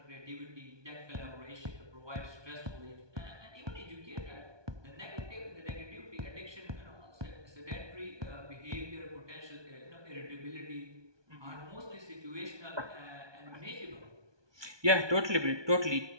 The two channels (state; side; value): late; left; 1.2 ms